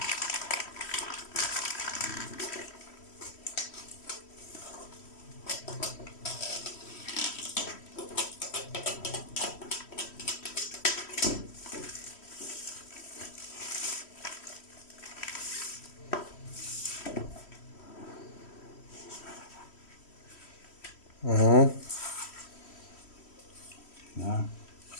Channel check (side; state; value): right; late; 3.1 ms